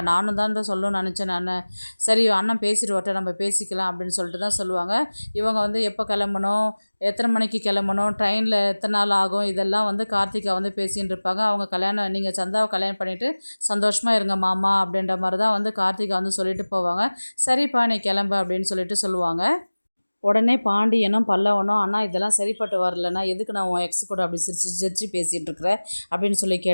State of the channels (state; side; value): inverted; both; correlation -1.00